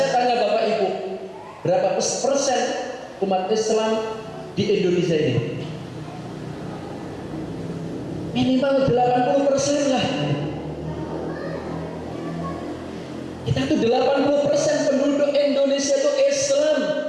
tanya Bapak Ibu, berapa persen umat Islam di Indonesia ini? Minimal 80% lah. Kita tuh 80% penduduk Indonesia itu Islam,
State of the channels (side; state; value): both; identical; correlation 1.00